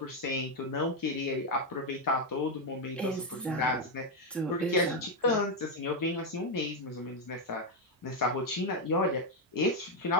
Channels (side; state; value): both; normal; correlation 0.04